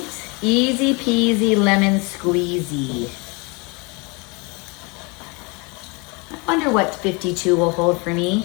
easy peasy lemon squeezy. I wonder what 52 will hold for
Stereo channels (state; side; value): quieter; right; 29.5 dB